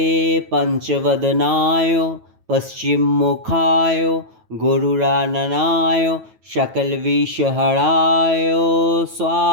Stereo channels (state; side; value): late; left; 9.2 ms